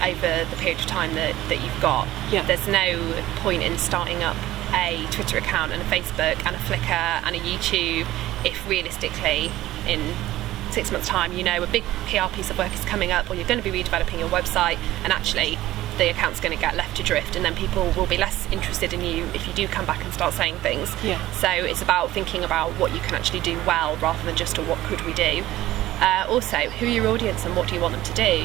over the period of time that you've got. Yeah. There's no point in starting up a Twitter account and a Facebook and a Flickr and a YouTube if realistically in 6 months' time a big PR piece of work is coming up, or you're going to be redeveloping your website, and actually the account's going to get left adrift, and then people will be less interested in you if you do come back and start saying things. Yeah. So it's about thinking about what you can actually do well rather than just what could we do. Also, who are your audience and what do you want them to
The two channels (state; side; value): quieter; left; 15.5 dB